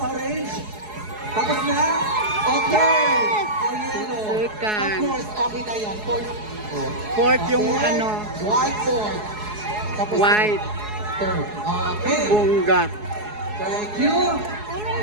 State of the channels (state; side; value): late; left; 4.7 ms